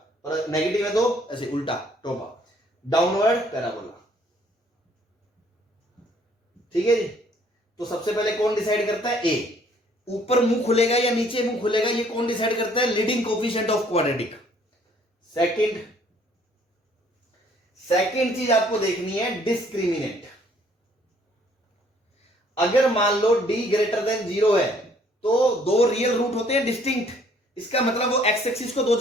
और नेगेटिव है तो ऐसे उल्टा टोपा, डाउनवर्ड पैराबोला, ठीक है जी। तो सबसे पहले कौन डिसाइड करता है, ए। ऊपर मुंह खुलेगा या नीचे मुंह खुलेगा, ये कौन डिसाइड करता है, leading coefficient of quadratic. Second चीज आपको देखनी है, डिस्क्रिमिनेंट। अगर मान लो d ग्रेटर देन 0 है तो दो रियल रूट होते हैं डिस्टिंक्ट, इसका मतलब वो एक्स एक्सिस को दो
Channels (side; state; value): both; normal; correlation 0.61